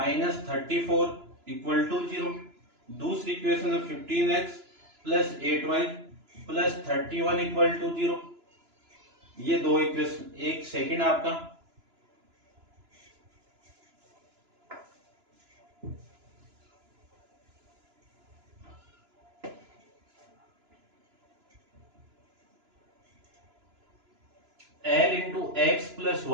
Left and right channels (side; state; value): left; late; 2.9 ms